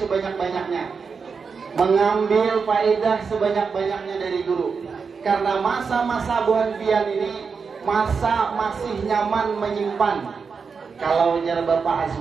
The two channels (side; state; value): left; quieter; 5.4 dB